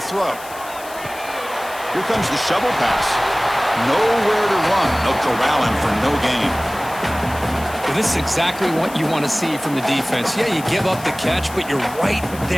throw. Here comes the shovel pass. Nowhere to run. They'll corral him for no gain. Well, this is exactly what you want to see from the defense. Yeah, you give up the catch, but you're right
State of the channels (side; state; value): left; noise; hiss, 17 dB below the sound